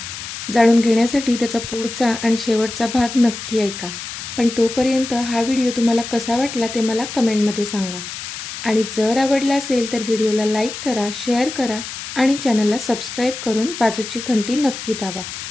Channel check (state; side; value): noise; left; hiss, 9 dB below the sound